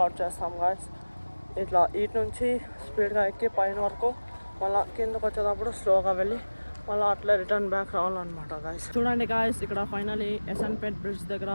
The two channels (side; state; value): both; inverted; correlation -1.00